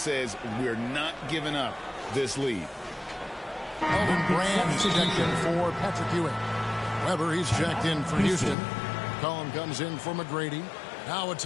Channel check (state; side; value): drops out; right; at 8.6 s